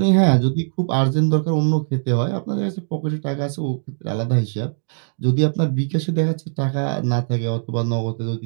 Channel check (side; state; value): left; silent; digital silence